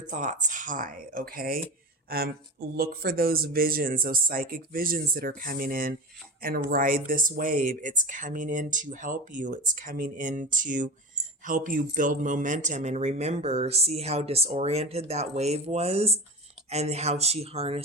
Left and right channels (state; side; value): normal; both; correlation 0.27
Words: high, okay? Look for those visions, those psychic visions that are coming in, and ride this wave. It's coming in to help you. It's coming in to help you build momentum. And remember, see how disoriented that wave was and how she